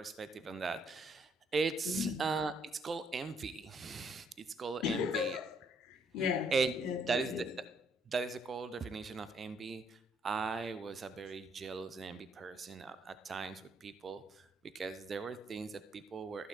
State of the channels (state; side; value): normal; both; correlation 0.69